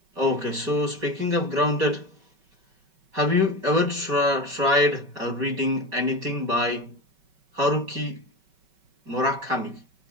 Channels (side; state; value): left; late; 5.3 ms